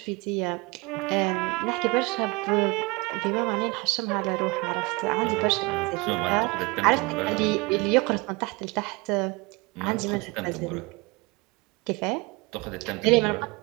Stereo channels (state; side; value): quieter; left; 25.4 dB